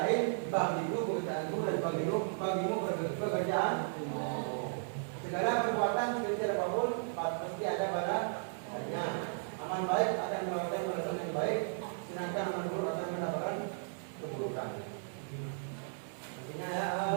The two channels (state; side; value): silent; left; 54 dB below the other